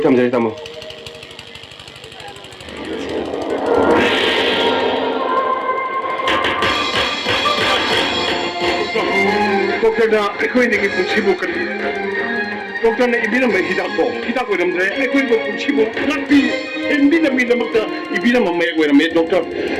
tama dali tama. Doktorna ekoinigi punchibu kan. Doktorna ibina mai hidako ramdre ekoinigi punchibu lakbi ibina mi damakta ibina mamma ko rame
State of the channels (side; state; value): both; identical; correlation 1.00